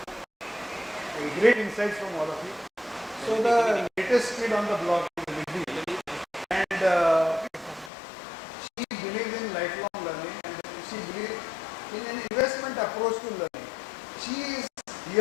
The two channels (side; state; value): right; drops out; at 7.9 s